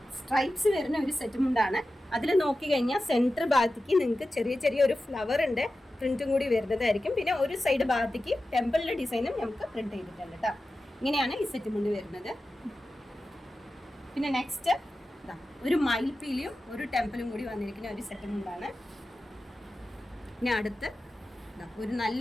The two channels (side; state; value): both; normal; correlation 0.93